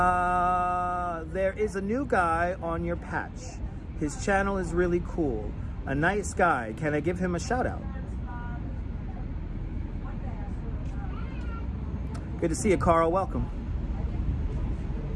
There is a new guy on your patch. His channel is really cool. A nice guy. Can I give him a shout out? Good to see you, Carl. Welcome.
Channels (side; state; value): both; identical; correlation 1.00